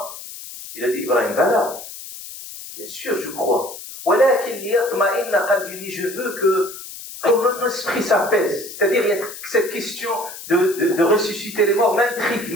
Il a dit Ibrahim, bala, bien sûr je crois. Walakin liyatma'inna qalbi, je veux que mon esprit s'apaise. C'est-à-dire, il y a cette question de ressusciter les morts m'intrigue,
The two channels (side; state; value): left; noise; hiss, 13 dB below the sound